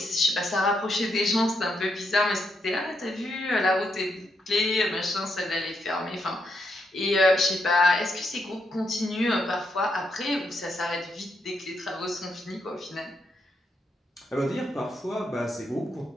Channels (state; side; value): normal; both; correlation 0.80